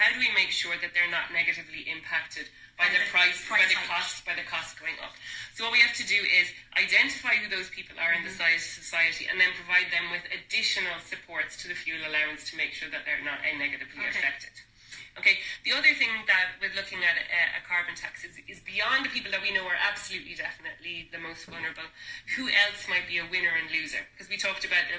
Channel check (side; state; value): both; identical; correlation 1.00